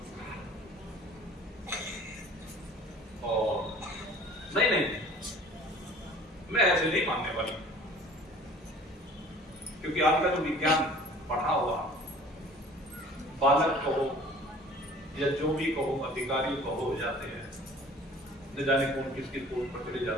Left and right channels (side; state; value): both; normal; correlation 0.48